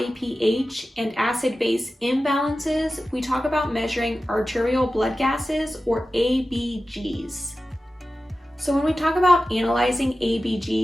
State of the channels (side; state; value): both; normal; correlation 0.94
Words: pH and acid-base imbalances, we talk about measuring arterial blood gases, or ABGs. So when we talk about analyzing